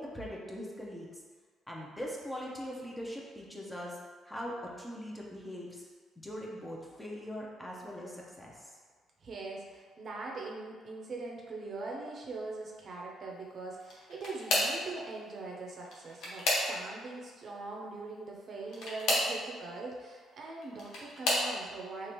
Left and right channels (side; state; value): both; normal; correlation 0.71